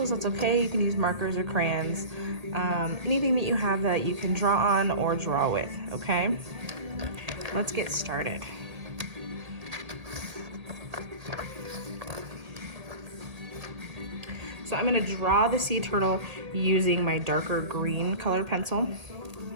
that's okay. You can use markers or crayons. Anything that you have that you can draw on or draw with, okay? Let's get started. So I'm gonna draw the sea turtle using my darker green colored pencil.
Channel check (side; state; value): left; late; 1.8 ms